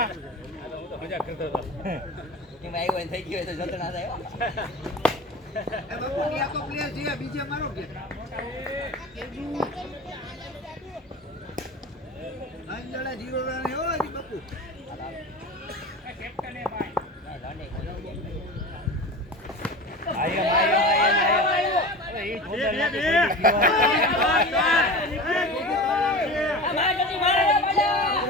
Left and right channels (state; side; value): normal; both; correlation 0.31